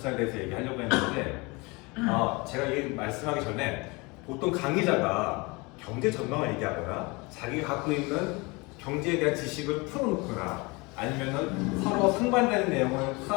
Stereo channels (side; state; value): right; quieter; 26.3 dB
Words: 대해서 얘기하려고 했는데 제가 이 말씀하기 전에 보통 강의자가 경제 전망을 얘기하거나 자기가 갖고 있는 경제에 대한 지식을 풀어놓거나 아니면은 서로 상반되는 내용을